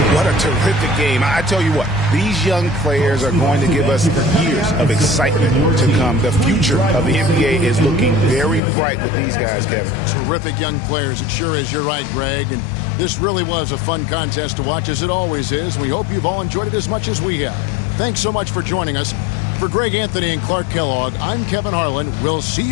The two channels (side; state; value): right; drops out; at 8.6 s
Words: What a terrific game. I tell you what, these young players are going to give us years of excitement to come. The future of the NBA is looking very bright with these guys, Kevin. Terrific young players. It sure is. You're right, Greg. And this really was a fun contest to watch, as it always is. We hope you've all enjoyed it as much as we have. Thanks so much for joining us. For Greg Anthony and Clark Kellogg, I'm Kevin Harlan. We'll see